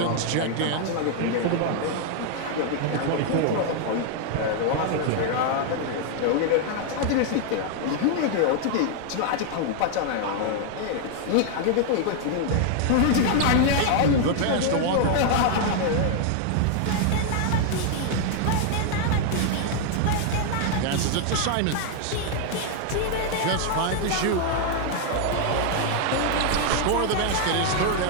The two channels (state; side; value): different; both; correlation 0.00